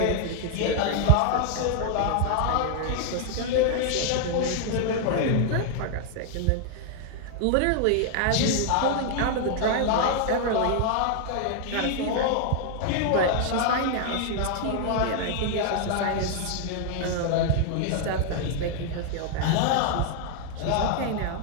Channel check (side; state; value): both; different; correlation 0.00